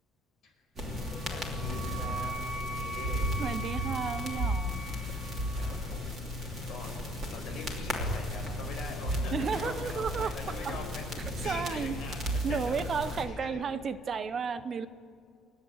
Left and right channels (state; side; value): normal; both; correlation 0.61